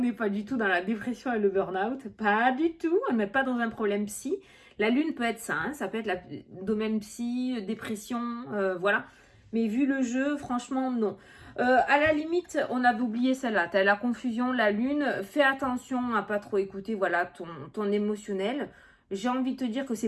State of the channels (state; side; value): identical; both; correlation 1.00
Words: pas du tout dans la dépression et le burn-out, pas du tout, on n'est pas dans un problème psy. La lune peut être ça, hein, ça peut être le domaine psy, dépression, voilà. Mais vu le jeu, franchement, non. À la limite, on avait oublié celle-là. Tu as la confusion, la lune. Fais attention à pas trop écouter voilà, ton émotionnel. J'ai envie de te dire que